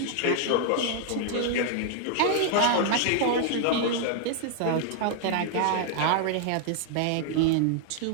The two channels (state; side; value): different; both; correlation 0.00